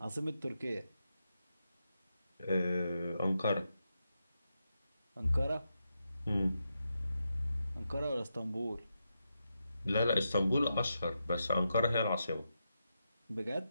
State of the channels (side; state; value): both; inverted; correlation -0.86